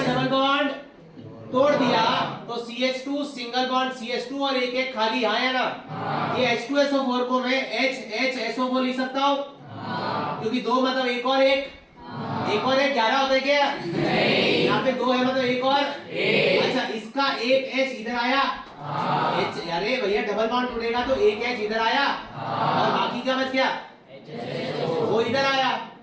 बॉन्ड तोड़ दिया। तो CH2 सिंगल बॉन्ड CH2 और एक खाली आया ना। ये H2SO4 को मैं HHSO4 लिख सकता हूँ क्योंकि 2 मतलब एक और एक 11 होता है क्या? नहीं, यहाँ पे 2 है मतलब एक और अच्छा, इसका एक H इधर आया। अरे भैया डबल बॉन्ड टूटेगा तो एक H इधर आया और बाकी क्या बच गया? वो इधर आया।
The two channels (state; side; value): identical; both; correlation 1.00